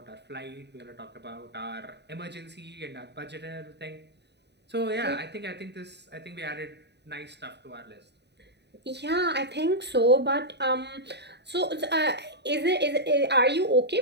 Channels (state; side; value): late; left; 0.50 ms